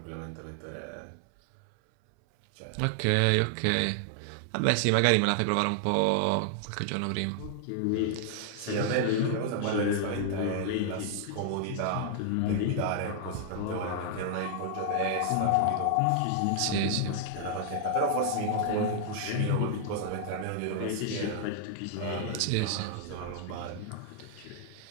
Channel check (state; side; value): different; both; correlation 0.00